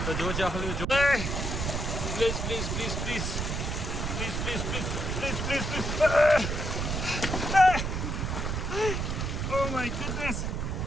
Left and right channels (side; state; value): right; noise; rumble, 2 dB below the sound